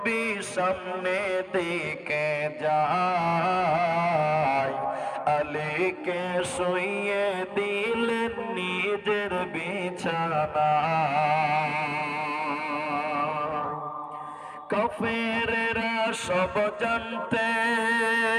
সামনে দিকে যায় আলীকে শুইয়ে দিলেন নিজের বিছানা কাফেরেরা সব জানতে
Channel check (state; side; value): identical; both; correlation 1.00